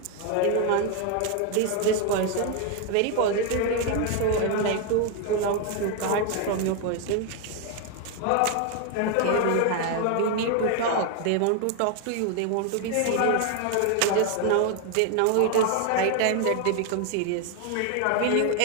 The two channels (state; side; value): different; both; correlation 0.01